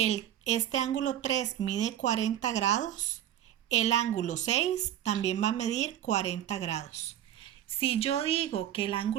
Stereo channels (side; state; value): left; quieter; 11.6 dB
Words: este ángulo 3 mide 40 grados, el ángulo 6 también va a medir 40 grados. Si yo digo que el